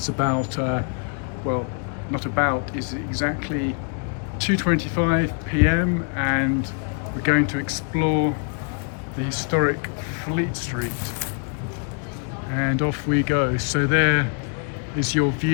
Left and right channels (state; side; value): quieter; right; 38.0 dB